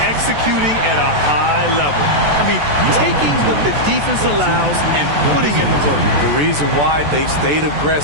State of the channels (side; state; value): left; late; 14 ms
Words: at a high level. I mean, taking what the defense allows and putting in the work. The reason why they've stayed